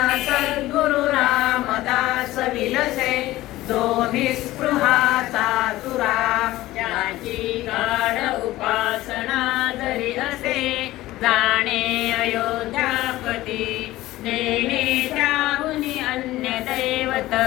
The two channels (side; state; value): right; quieter; 16.7 dB